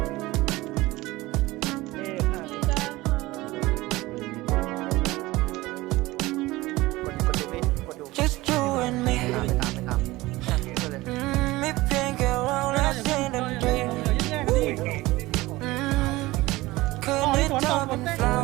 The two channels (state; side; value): quieter; left; 19.5 dB